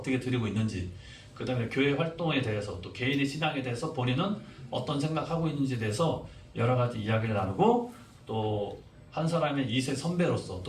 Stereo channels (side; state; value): both; identical; correlation 1.00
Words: 드리고 있는지, 그 다음에 교회 활동에 대해서 또 개인의 신앙에 대해서 본인은 어떤 생각하고 있는지에 대해서 여러 가지 이야기를 나누고 또 한 사람의 2세 선배로서